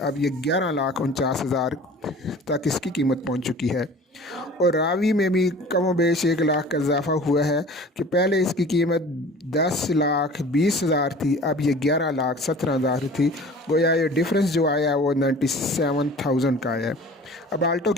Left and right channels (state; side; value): normal; both; correlation 0.44